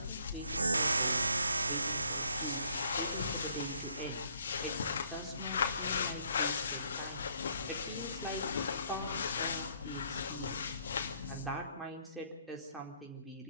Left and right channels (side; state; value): both; inverted; correlation -0.66